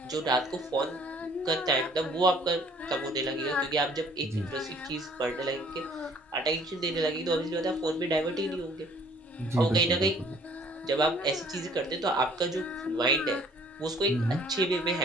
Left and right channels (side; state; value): both; normal; correlation 0.57